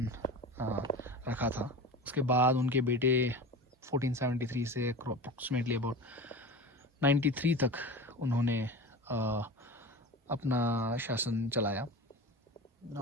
रखा था। उसके बाद उनके बेटे 1473 से अप्रॉक्सीमेटली अबाउट 93 तक उन्होंने अपना शासन चलाया।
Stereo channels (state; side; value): normal; both; correlation 0.31